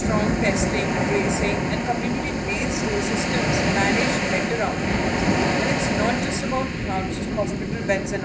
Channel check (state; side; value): identical; both; correlation 1.00